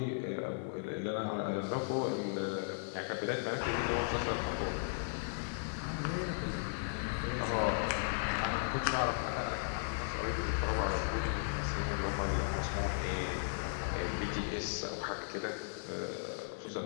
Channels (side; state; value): right; silent; digital silence